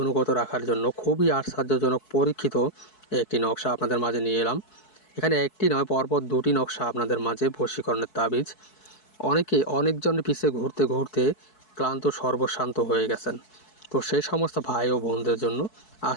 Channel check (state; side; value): late; right; 4.6 ms